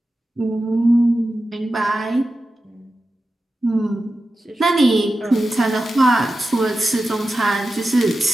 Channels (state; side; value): normal; both; correlation 0.92